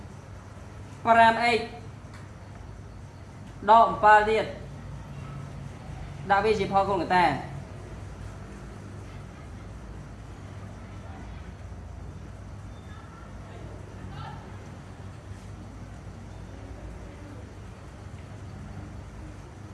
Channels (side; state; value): both; identical; correlation 1.00